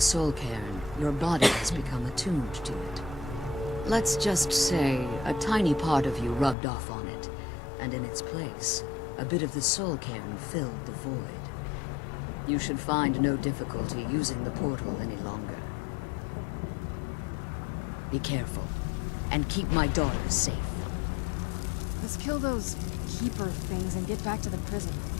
Soul Cairn, your body has become attuned to it. Let's just say a tiny part of you rubbed off on it, and in its place, a bit of the Soul Cairn filled the void. You should find no difficulty using the portal any longer. Be careful, and keep my daughter safe. Let's kill those keeper things and get back to the prison.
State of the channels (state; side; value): drops out; right; at 6.6 s